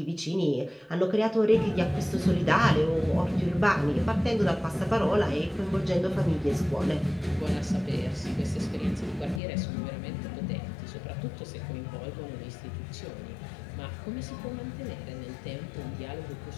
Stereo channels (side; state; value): right; drops out; at 9.4 s